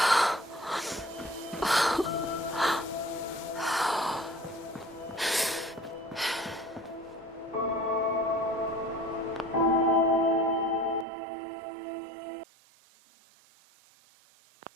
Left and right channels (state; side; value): drops out; left; at 11.1 s